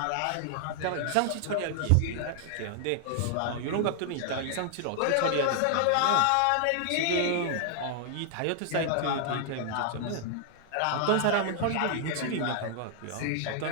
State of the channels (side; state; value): both; different; correlation 0.00